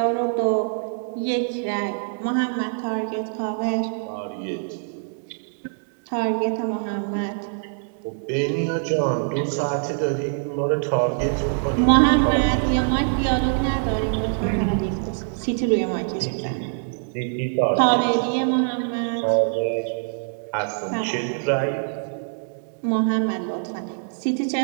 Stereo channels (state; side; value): silent; left; digital silence